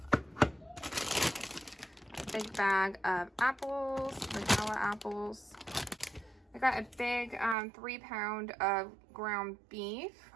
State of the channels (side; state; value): left; drops out; at 7.6 s